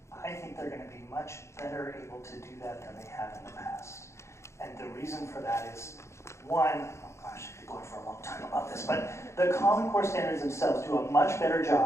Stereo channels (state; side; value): late; right; 0.13 ms